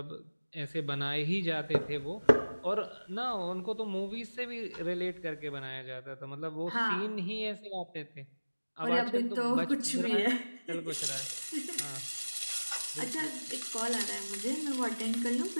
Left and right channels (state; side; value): inverted; both; correlation -1.00